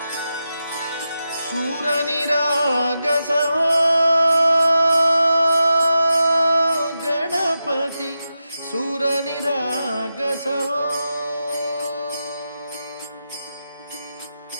सूर निरागस हो गणपती सूर निरागस हो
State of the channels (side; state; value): both; inverted; correlation -0.89